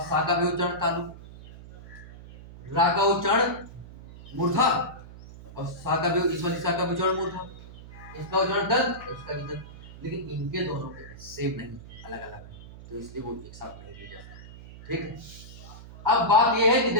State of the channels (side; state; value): right; noise; hum, 16 dB below the sound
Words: सा का भी उच्चारण तालु, रा का उच्चारण मूर्धा और सा का भी, इस वाली सा का भी उच्चारण मूर्धा, इसका उच्चारण दंत, इसका भी दंत, लेकिन इनके दोनों के सेम नहीं, अलग अलग है, तो इसलिए वो एक साथ नहीं लिया जाता। ठीक है, अब बात यह है कि